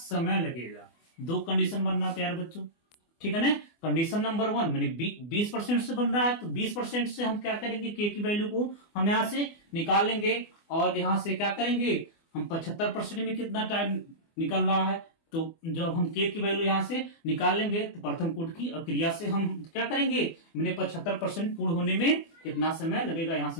लगेगा। दो कंडीशन बनना प्यारे बच्चों, ठीक है ना। कंडीशन नंबर 1 मैंने 20% से बन रहा है, तो 20% से हम क्या करेंगे, के की वैल्यू को हम यहां से निकाल लेंगे और यहां से क्या करेंगे हम 75% में कितना टाइम निकल रहा है, तो जब हम के की वैल्यू यहां से निकाल लेंगे तो प्रथम कोट की क्रिया से हम क्या करेंगे, मैंने 75% पूर्ण होने में कितना समय लगेगा, यहां से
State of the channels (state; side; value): late; right; 24 ms